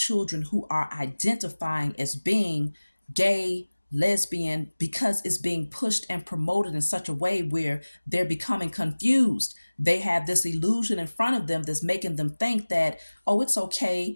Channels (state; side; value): inverted; both; correlation -1.00